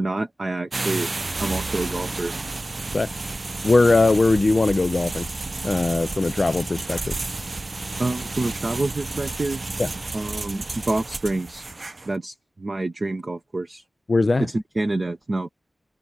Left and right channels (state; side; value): normal; both; correlation 0.95